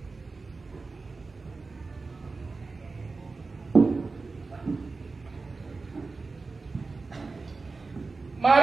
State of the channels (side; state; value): left; quieter; 3.9 dB